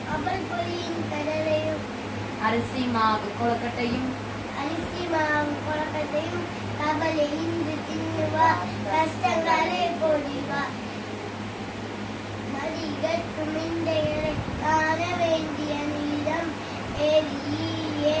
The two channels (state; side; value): identical; both; correlation 1.00